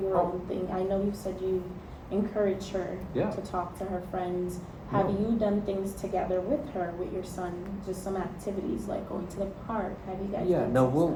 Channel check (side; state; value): both; identical; correlation 1.00